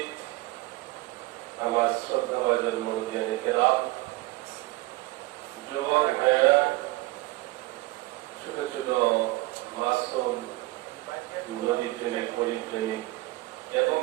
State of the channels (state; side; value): quieter; left; 20.2 dB